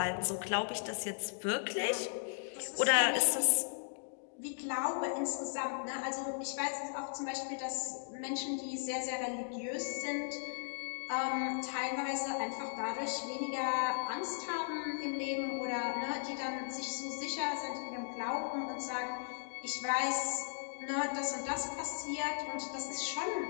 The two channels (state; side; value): silent; right; digital silence